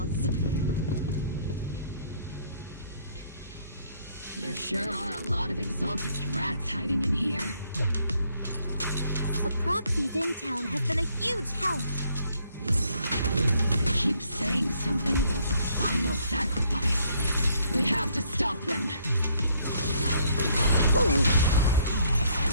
There sure are a lot of Exaltist rats hiding in here. The Proxy's intel has been a huge help. They keep saying something about the final sacrifice. We have to stop them.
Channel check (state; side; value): inverted; both; correlation -0.67